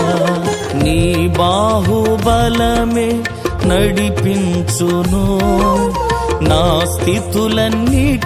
నీ బాహుబలమే నడిపించును, నా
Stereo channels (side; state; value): both; identical; correlation 1.00